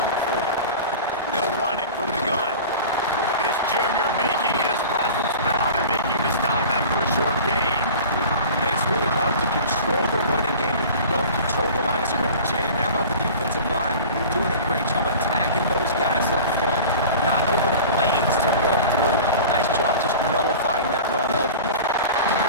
forward. They'll run it from the gun. This junior making his presence felt and making the stop after a short gain. It's really hard to control the running game if you don't control the line of scrimmage. And how about the defensive line doing a great job attacking those guys up front, not open up lanes to run through. Nice job just nullifying that run altogether.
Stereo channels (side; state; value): both; inverted; correlation -0.37